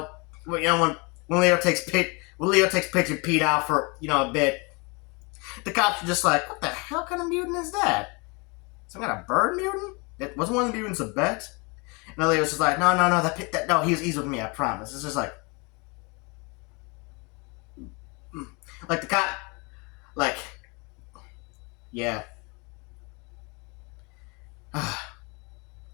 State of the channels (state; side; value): quieter; right; 29.6 dB